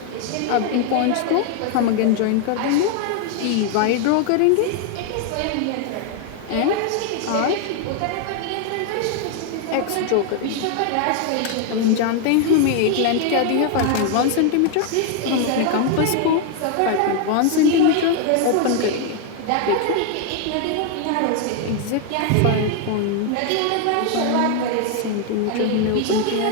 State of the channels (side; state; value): both; different; correlation 0.00